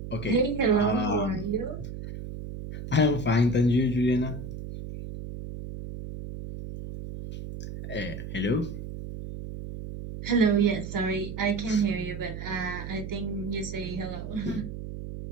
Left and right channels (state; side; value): noise; right; hum, 8 dB below the sound